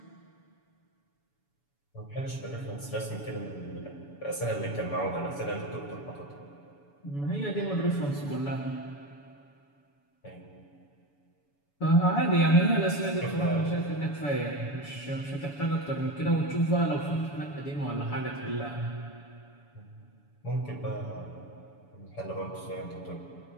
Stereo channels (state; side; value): late; right; 7.0 ms